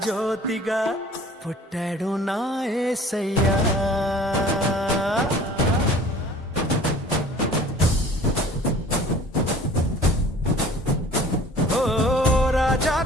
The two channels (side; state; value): both; normal; correlation 0.48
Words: జ్యోతిగా పుట్టాడు నా యేసయ్యా. ఓ